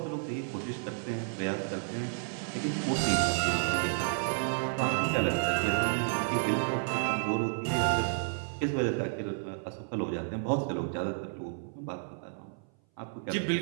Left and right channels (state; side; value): silent; left; 57 dB below the other